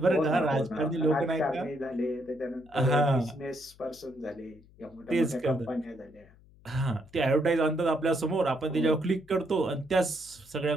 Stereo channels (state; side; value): noise; left; hum, 26 dB below the sound